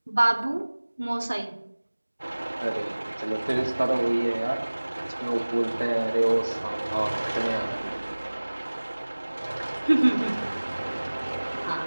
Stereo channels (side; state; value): both; inverted; correlation -1.00